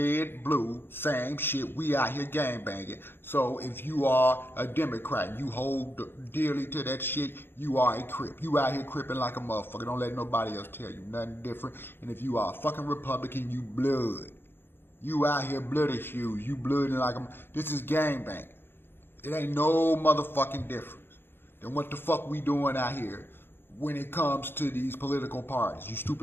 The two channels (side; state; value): right; late; 0.10 ms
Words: blue, same shit, we out here gangbanging. So if you are a Democrat and you hold dearly to that shit, you are a crip. You out here cripping like a motherfucker. Don't let nobody else tell you nothing different. And if you are a fucking Republican, you blood. You out here bloody shoes. You blooding like a... This is gangbanging. It ain't no motherfucking difference than what the fuck we doing out here when it comes to these political parties. You